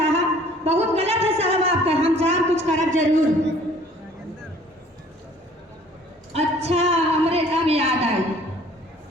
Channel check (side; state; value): both; normal; correlation 0.54